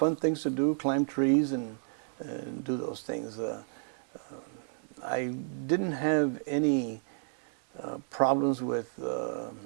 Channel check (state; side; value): silent; left; digital silence